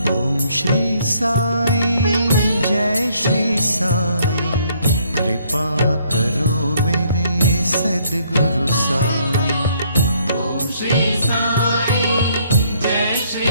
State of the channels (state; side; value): inverted; both; correlation -0.66